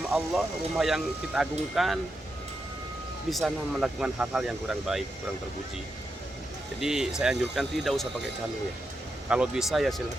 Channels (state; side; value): normal; both; correlation 0.86